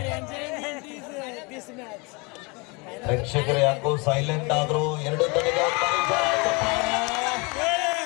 ಪ್ರೇಕ್ಷಕರು ಯಾಕೋ ಸೈಲೆಂಟ್ ಆದ್ರು. 2 ತಡೆಗೆ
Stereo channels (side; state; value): right; quieter; 28.8 dB